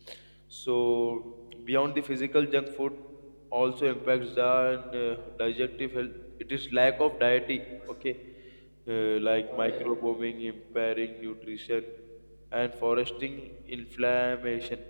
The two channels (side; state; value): both; inverted; correlation -1.00